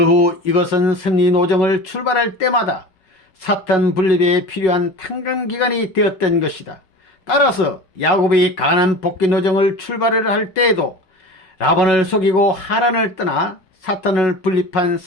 후 이것은 승리 노정을 출발할 때마다 사탄 분립에 필요한 탕감 기간이 되었던 것이다. 따라서 야곱이 가나안 복귀 노정을 출발을 할 때에도 라반을 속이고 하란을 떠나 사탄을 분립한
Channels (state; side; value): late; right; 5.4 ms